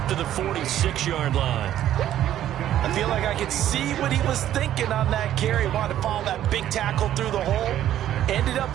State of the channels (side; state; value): left; quieter; 11.9 dB